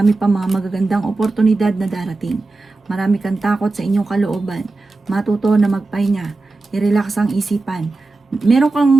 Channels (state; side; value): quieter; left; 3.4 dB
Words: pa mga magagandang oportunidad na darating. Marami kang takot sa inyong kalooban. Matuto na magpahinga. I-relax ang isipan. Meron